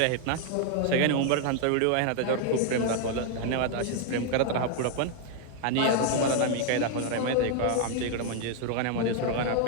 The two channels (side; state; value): both; different; correlation 0.00